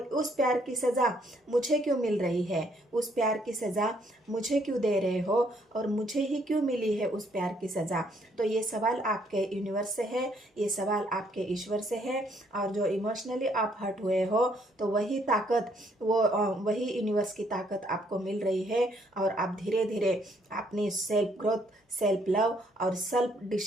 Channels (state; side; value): normal; both; correlation 0.68